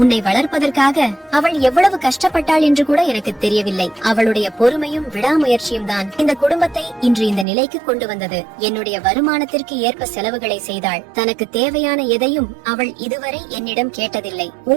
உன்னை வளர்ப்பதற்காக அவள் எவ்வளவு கஷ்டப்பட்டாள் என்று கூட எனக்கு தெரியவில்லை. அவளுடைய பொறுமையும் விடாமுயற்சியும் தான் இந்த குடும்பத்தை இன்று இந்த நிலைக்கு கொண்டு வந்தது. என்னுடைய வருமானத்திற்கு ஏற்ப செலவுகளை செய்தாள். தனக்கு தேவையான எதையும் அவள் இதுவரை என்னிடம் கேட்டதில்லை.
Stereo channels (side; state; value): left; drops out; at 7.5 s